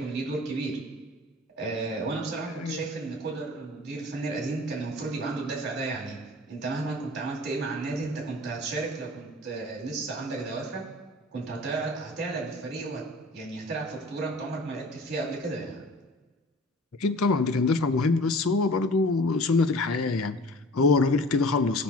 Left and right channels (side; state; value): both; normal; correlation 0.43